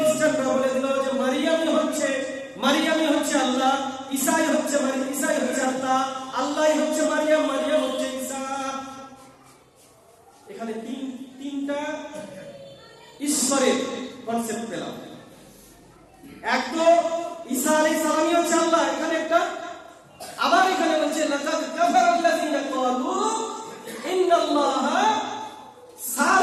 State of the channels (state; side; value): identical; both; correlation 1.00